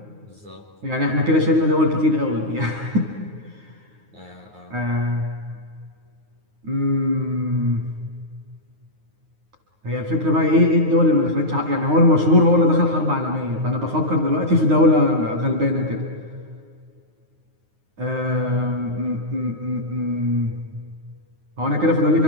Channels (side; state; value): left; late; 9.5 ms